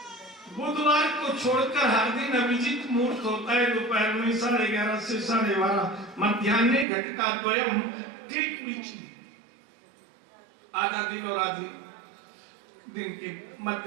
बुधवार को छोड़कर हर दिन अभिजीत मुहूर्त होता है, दोपहर में 11:30 से 12:30, मध्याह्न घटिका द्वयम, ठीक बीच में आधा दिन और आधी दिन के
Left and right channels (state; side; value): drops out; left; at 6.9 s